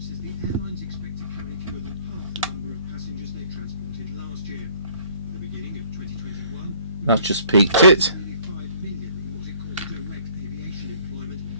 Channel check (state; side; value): inverted; both; correlation -0.57